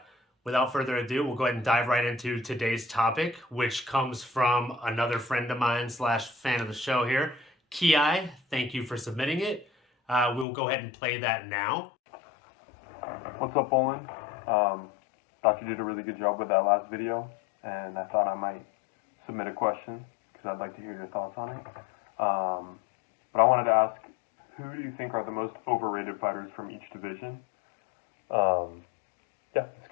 without further ado, we'll go ahead and dive right into today's topic, which comes from another friend of mine / fan of the show here, Keai. Thank you for submitting it. We'll go ahead and play that now. What's up, Olin? Thought you did a really good job with that last video, and I thought I might submit a question because I'd like to hear your thoughts on it. But I wanted to ask, who do you think are the most overrated fighters from each division? This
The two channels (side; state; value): right; drops out; at 10.5 s